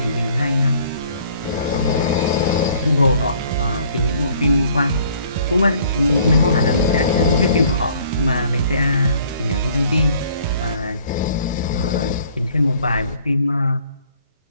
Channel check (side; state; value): both; inverted; correlation -0.58